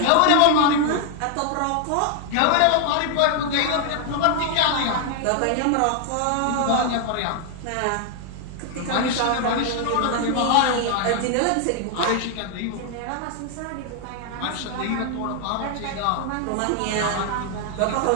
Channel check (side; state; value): both; different; correlation 0.00